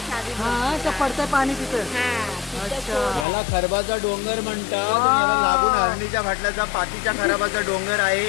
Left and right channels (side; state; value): right; drops out; at 3.2 s